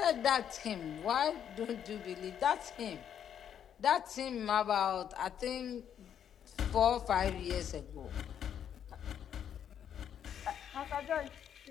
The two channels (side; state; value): right; quieter; 9.0 dB